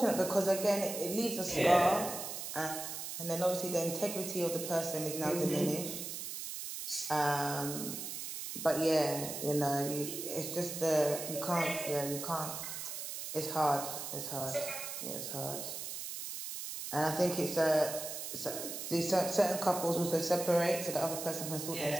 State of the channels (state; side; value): noise; right; hiss, 6 dB below the sound